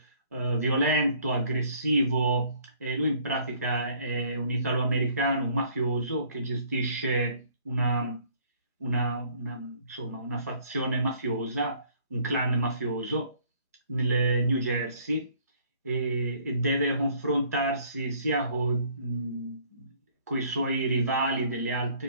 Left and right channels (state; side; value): inverted; both; correlation -0.59